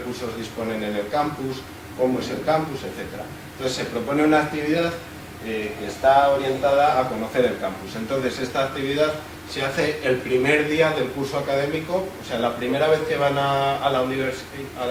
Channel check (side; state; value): both; identical; correlation 1.00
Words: disponen en el campus, cómo es el campus, etc. Entonces se propone una actividad que está orientada a conocer el campus. Entonces esta actividad se hace el primer día del curso académico, o sea, la primera vez que van a la